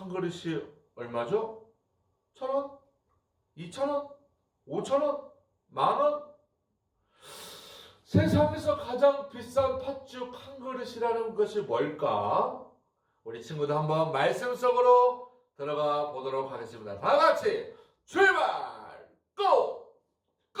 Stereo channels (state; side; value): identical; both; correlation 1.00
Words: 그릇이 얼마죠? 1,000원? 2,000원? 5,000원? 만원? 세상에서 가장 비싼 팥죽 한 그릇이라는 것이 뭘까? 우리 친구들 한번 말씀 속으로 들어가 보도록 하겠습니다. 다 같이 출발! 고!